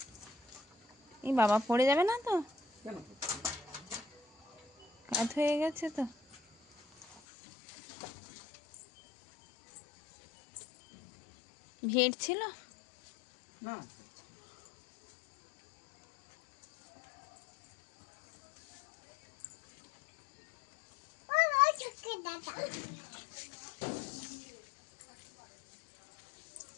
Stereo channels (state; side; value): drops out; right; at 7.2 s